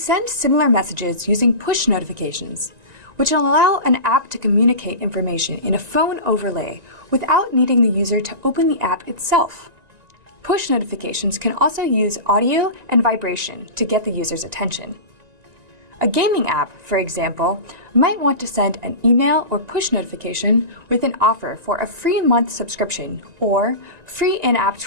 similar messages using push notifications, which allow an app to communicate information in a phone overlay without needing the user to open the app itself. push notifications can also use audio and vibration to get the user's attention. A gaming app, for example, might want to send an email or push notification with an offer for a free month subscription or free in-app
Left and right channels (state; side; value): late; left; 1.9 ms